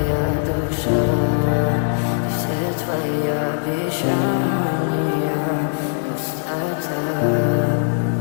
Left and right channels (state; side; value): silent; right; digital silence